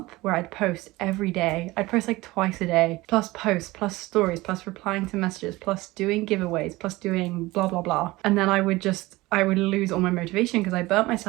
where I'd post every day. I'd post twice a day, plus posts, plus stories, plus replying to messages, plus doing giveaways, plus doing blah blah blah. And then I would lose all my motivation because I burnt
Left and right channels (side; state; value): left; quieter; 20.0 dB